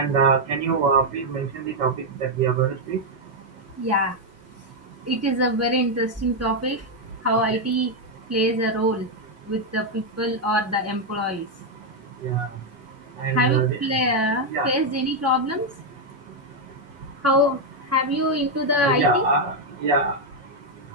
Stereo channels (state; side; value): normal; both; correlation 0.01